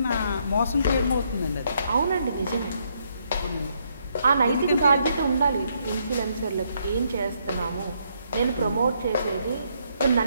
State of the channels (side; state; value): both; inverted; correlation -0.74